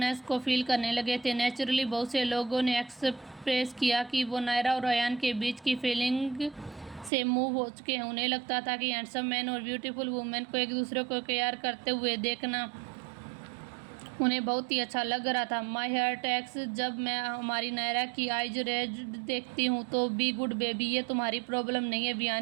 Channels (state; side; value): drops out; left; at 7.1 s